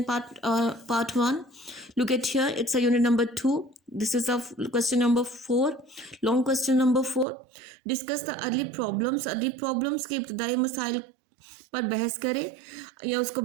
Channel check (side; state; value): left; drops out; at 7.2 s